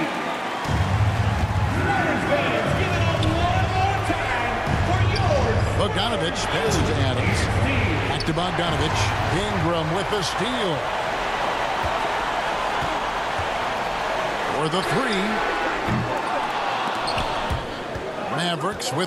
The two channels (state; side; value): identical; both; correlation 1.00